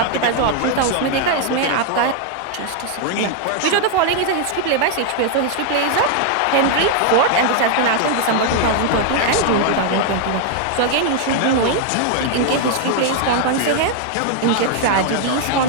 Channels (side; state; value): both; different; correlation 0.00